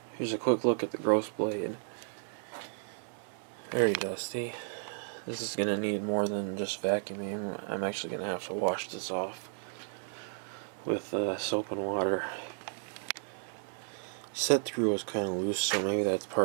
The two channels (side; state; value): left; silent; digital silence